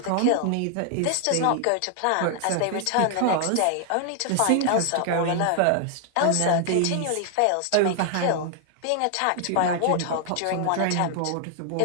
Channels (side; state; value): both; different; correlation 0.00